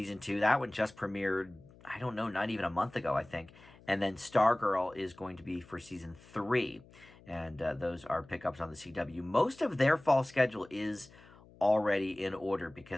2. That one just premiered, I don't know, not even a month ago, I think. And then Stargirl is going to be for season 3. And those are pickups on the CW. Most of their fall schedule is already in order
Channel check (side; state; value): left; noise; hum, 24 dB below the sound